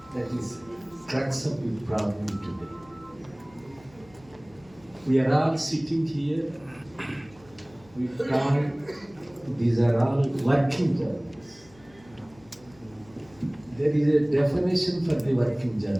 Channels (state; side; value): noise; left; hum, 26 dB below the sound